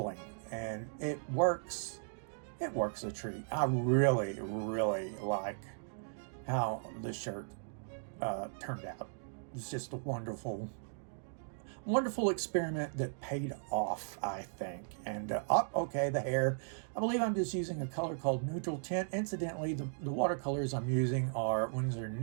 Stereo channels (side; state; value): left; silent; digital silence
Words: and it works. It works a treat. I really, really like how the shirt turned out. It's just a wonderful experiment that paid off, I think. And okay, the hair. I believe I'm just using a color called neutral tint. Incidentally, the watercolors I'm using are Winsor